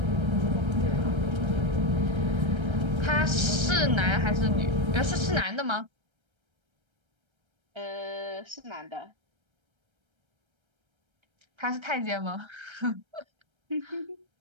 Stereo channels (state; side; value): late; left; 1.3 ms